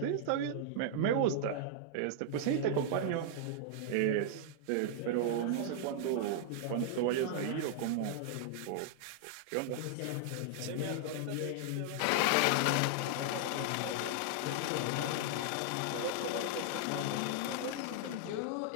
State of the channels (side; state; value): both; different; correlation -0.01